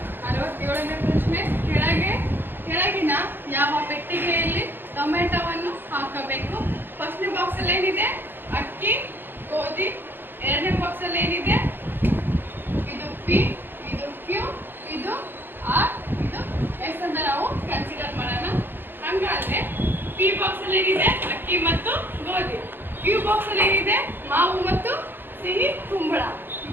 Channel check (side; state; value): left; late; 0.094 ms